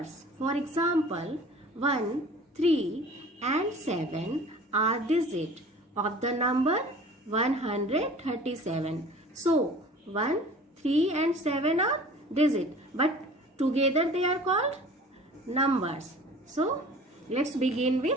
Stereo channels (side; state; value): both; normal; correlation 0.45